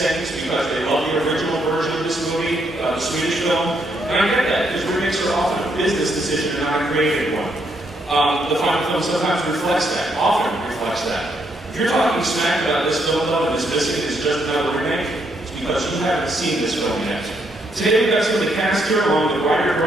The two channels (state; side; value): normal; both; correlation 0.75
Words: things because they love the original version of this movie, the Swedish film, and I get that, because remakes are often a business decision and not a creative one. The final film sometimes reflects that, often reflects that. If you're talking smack about this film, though, and this missing is just another remake, it's because you haven't seen this film yet. Today, we've got some of the cast here, along with